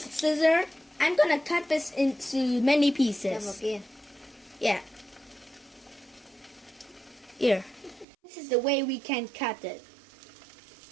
scissor. I'm gonna cut this into many Cho vào pieces. kia. Yeah. Here. This is the way we can cut it.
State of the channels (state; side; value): drops out; left; at 8.1 s